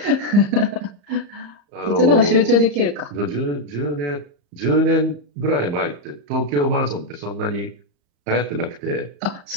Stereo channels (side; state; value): left; late; 35 ms